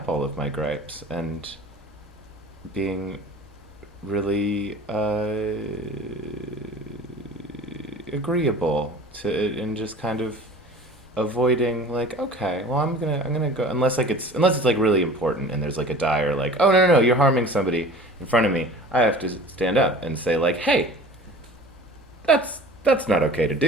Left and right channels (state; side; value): normal; both; correlation 0.42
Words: all of my gripes and being really agreeable to it, and just kind of avoiding, like, okay, well, I'm gonna go, unless it's like really important and there's like a dire, like, oh no, you're harming somebody in front of me. I have to stand up and say, like, hey, that's not okay to